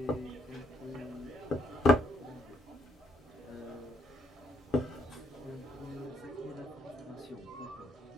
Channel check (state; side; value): normal; both; correlation 0.74